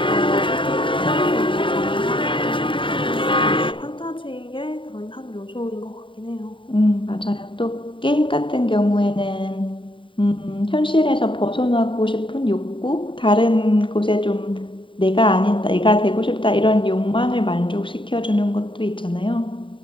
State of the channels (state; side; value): late; right; 0.25 ms